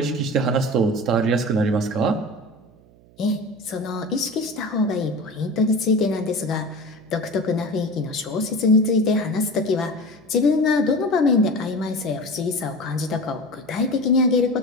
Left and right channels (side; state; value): right; noise; hum, 27 dB below the sound